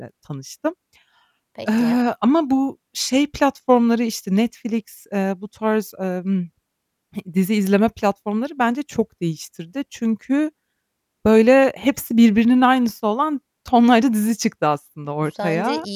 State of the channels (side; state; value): both; identical; correlation 1.00